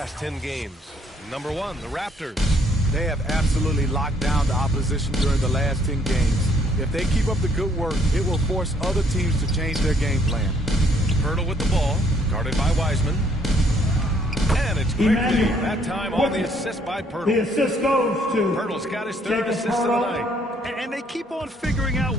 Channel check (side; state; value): both; normal; correlation 0.65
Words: 10 games. Number 1, the Raptors. They have absolutely locked down the opposition during the last 10 games. If they keep up the good work, it will force other teams to change their game plan. Pirtle with the ball, guarded by Wiseman. And it's Quickly, that time on the assist by Pirtle. The assist goes to Pirtle's got his 3rd assist of the night. And they keep on figuring out